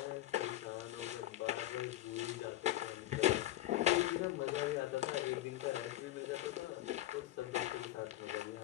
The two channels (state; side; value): quieter; right; 14.8 dB